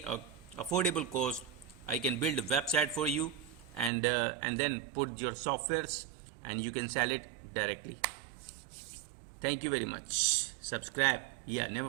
affordable cost, I can build a website for you, and then put your softwares and you can sell it directly. Thank you very much. Subscribe. Yeah,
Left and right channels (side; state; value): left; drops out; at 3.9 s